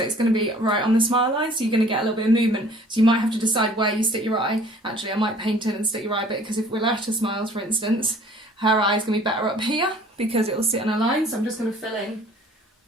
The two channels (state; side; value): normal; both; correlation 0.53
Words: it's going to be right on the smile line, so you're going to get a little bit of movement. So you might have to decide where you stick your eye. Actually, I might paint it and stick your eye a bit, because if Loretta smiles, for instance, her eye's going to be better up here because it'll sit on a line. So I'm just going to fill in